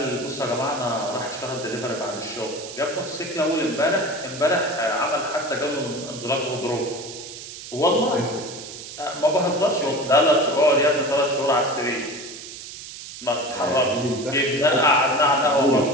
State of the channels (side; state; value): right; noise; hiss, 12 dB below the sound